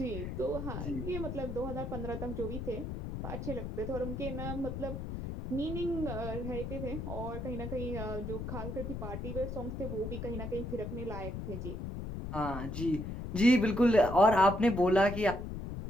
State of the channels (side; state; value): left; noise; rumble, 6 dB below the sound